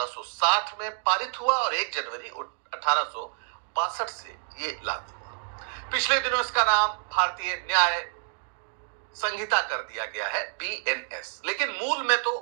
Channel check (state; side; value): silent; left; digital silence